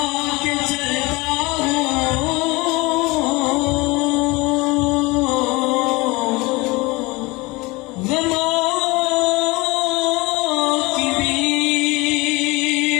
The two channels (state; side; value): quieter; right; 24.0 dB